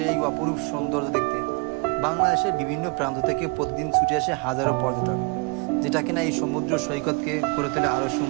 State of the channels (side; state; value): left; quieter; 30.5 dB